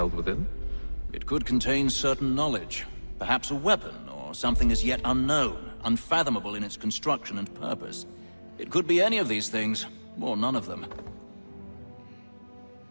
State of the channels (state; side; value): inverted; both; correlation -1.00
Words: within? It could contain certain knowledge. Perhaps a weapon, or something as yet unknown, unfathomable in its construction and purpose. It could be any of these things, or none of them.